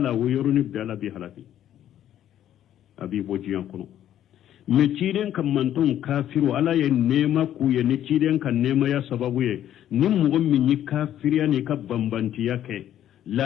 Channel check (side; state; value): right; quieter; 11.3 dB